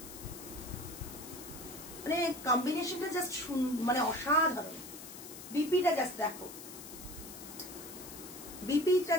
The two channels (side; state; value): left; noise; hiss, 13 dB below the sound